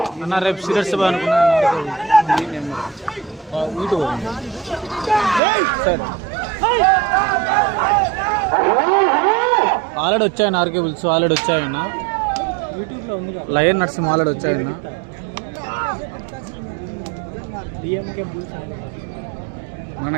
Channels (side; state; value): left; drops out; at 5.4 s